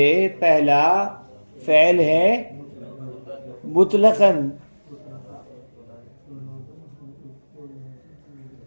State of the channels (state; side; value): inverted; both; correlation -1.00